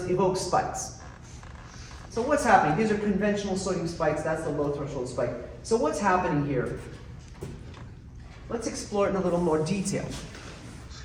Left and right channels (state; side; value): identical; both; correlation 1.00